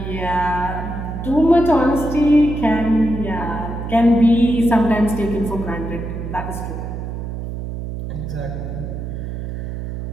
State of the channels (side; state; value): right; noise; hum, 6 dB below the sound